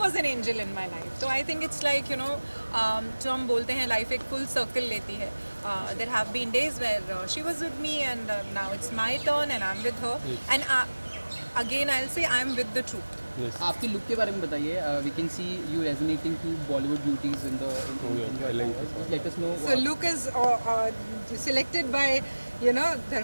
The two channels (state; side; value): inverted; both; correlation -1.00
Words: an angel in my life तो आई थिंक इट्स लाइक जो हम बोलते हैं लाइफ एक फुल सर्कल लेती है there have been days where she was with me and now it's my turn and I am with her and again I will say I am with the truth आपकी look के बारे में बताइए we can see you resonating to Bollywood beauties in the let us know so look is selected by